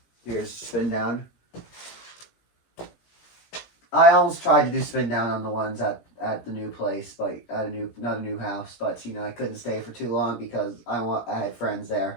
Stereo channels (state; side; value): late; right; 17 ms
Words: spin down. I almost tried to do spin down on the ones at the new place, but not a new house, but you know, I couldn't stay for too long because I had friends